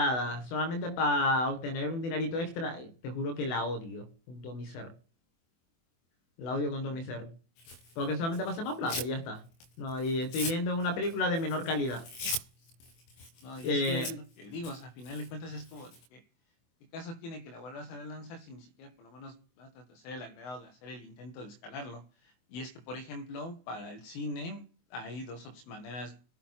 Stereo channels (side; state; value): right; late; 24 ms